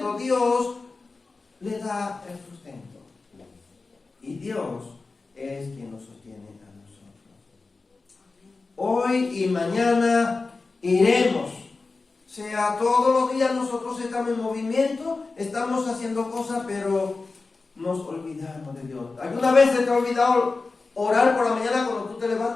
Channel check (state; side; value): quieter; right; 3.9 dB